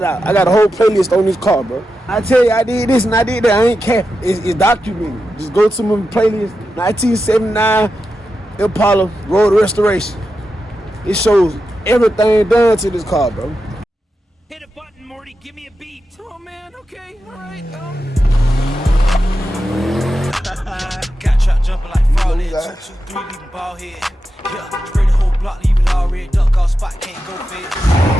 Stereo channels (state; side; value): normal; both; correlation 0.89